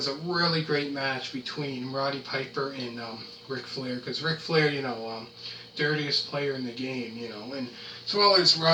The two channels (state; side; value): identical; both; correlation 1.00